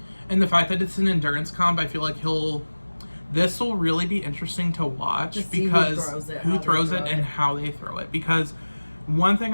And the fact that it's an endurance comp, I feel like this will really be interesting to watch because who throws it and how they throw it. Because one thing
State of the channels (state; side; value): inverted; both; correlation -1.00